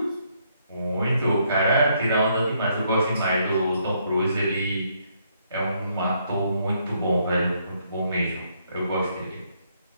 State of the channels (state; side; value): inverted; both; correlation -0.72